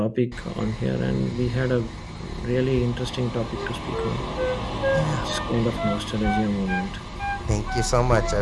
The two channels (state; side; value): identical; both; correlation 1.00